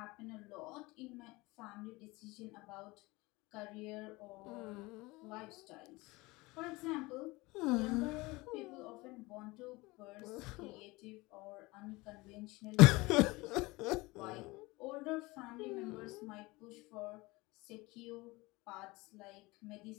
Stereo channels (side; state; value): right; quieter; 22.6 dB